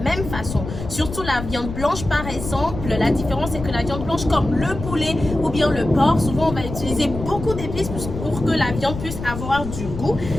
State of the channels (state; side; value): noise; left; rumble, 8 dB below the sound